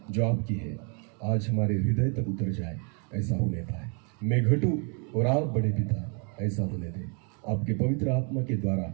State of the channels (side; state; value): left; quieter; 36.9 dB